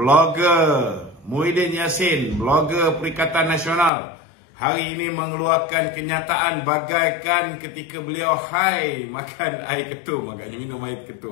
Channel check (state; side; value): drops out; right; at 3.9 s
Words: Muhyiddin Yassin, blogger Perikatan Nasional, hari ini mengeluarkan kenyataan bagaikan ketika beliau makan air ketum, agaknya minum air